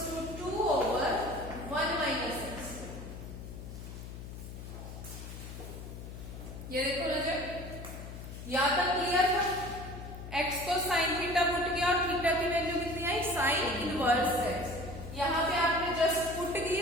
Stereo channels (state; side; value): noise; left; hum, 11 dB below the sound